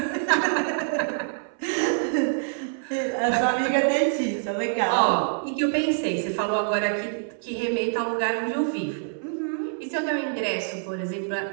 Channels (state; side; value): silent; left; 61 dB below the other